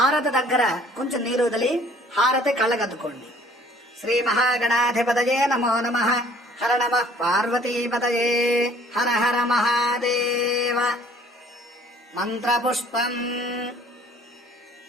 దగ్గర కొంచెం నీరు వదిలి హారతి కళ్ళగద్దుకోండి. శ్రీ మహాగణాధిపతయే నమో నమః. హర నమః పార్వతీపతయే. హర హర మహాదేవ. మంత్రపుష్పం.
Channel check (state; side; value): normal; both; correlation 0.56